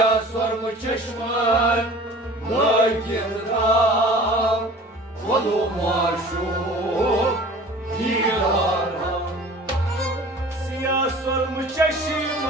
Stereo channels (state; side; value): normal; both; correlation 0.44